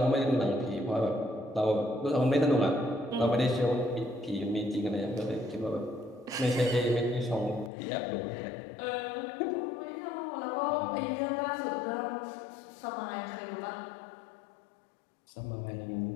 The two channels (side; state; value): right; drops out; at 7.7 s